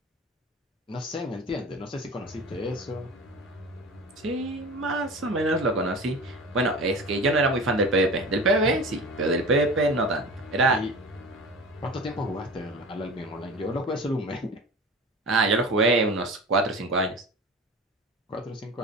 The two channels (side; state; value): both; normal; correlation 0.35